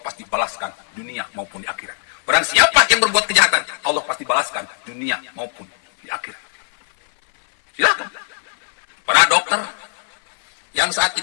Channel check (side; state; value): right; silent; 58 dB below the other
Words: pasti balaskan dunia maupun di akhirat. Barang siapa yang berbuat kejahatan, Allah pasti balaskan dunia maupun di akhirat. Silakan. Para dokter yang saat